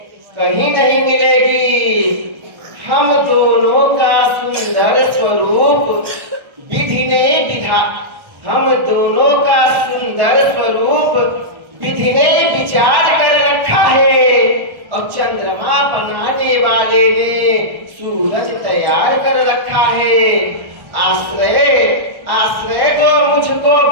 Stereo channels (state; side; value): late; left; 1.3 ms